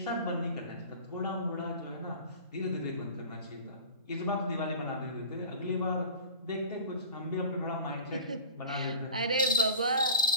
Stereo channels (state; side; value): inverted; both; correlation -0.40